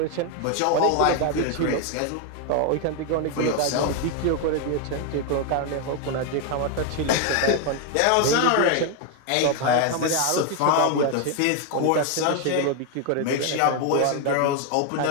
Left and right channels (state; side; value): different; both; correlation 0.01